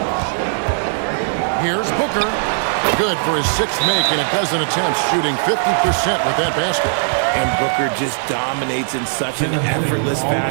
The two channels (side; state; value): left; silent; digital silence